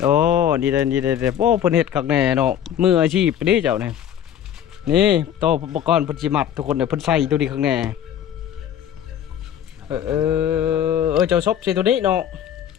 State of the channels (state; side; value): quieter; right; 9.9 dB